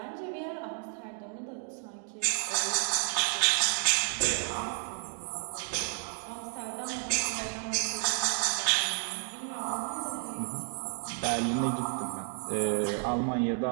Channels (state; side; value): silent; left; 56 dB below the other